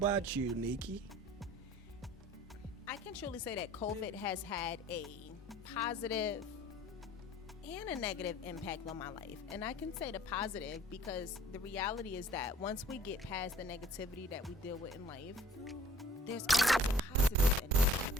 you, Nikkci? I can truly say that COVID has had a positive and a negative impact on my life. And I can say the positive because the reality is that once we get past the negativity that we deal with in life, there's always a positive in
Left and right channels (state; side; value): normal; both; correlation 0.54